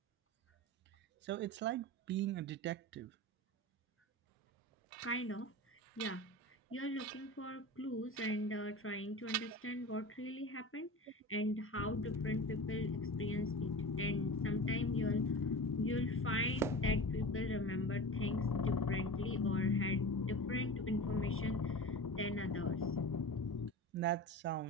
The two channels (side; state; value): both; normal; correlation 0.31